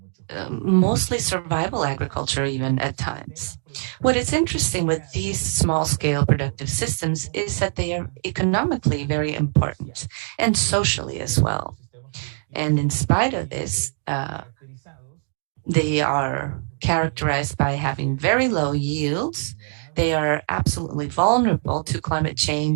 mostly survival agriculture even at times. What is interesting with these small-scale productive systems is that they are economically very important and socially as well. And in spite of this, they are characterized by having very low yields. They are absolutely vulnerable to climate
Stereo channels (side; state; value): left; silent; 63 dB below the other